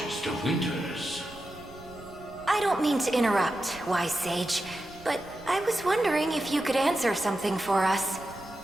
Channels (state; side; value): noise; right; rumble, 20 dB below the sound